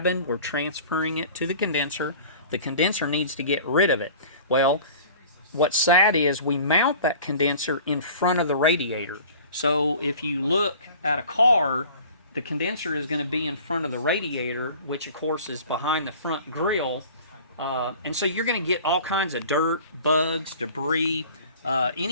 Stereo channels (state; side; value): inverted; both; correlation -0.44